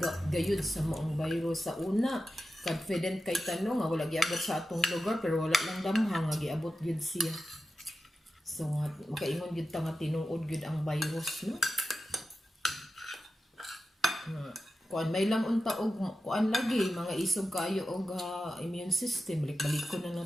gayud sa maong virus. Sa una, confident kay tanong nga wala giabot sa atong lugar pero wala lang damhang nga giabot gyud siya. So makaingon gyud ta nga tinuod gyud ang virus, no? Kuan may lang unta og kuan lagi mga isog kayo og immune system. Balik ko na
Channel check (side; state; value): both; normal; correlation 0.92